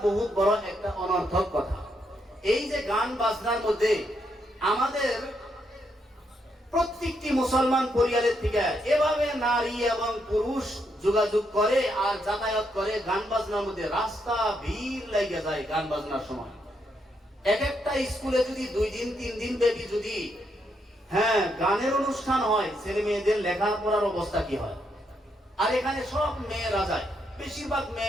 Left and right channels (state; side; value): normal; both; correlation 0.78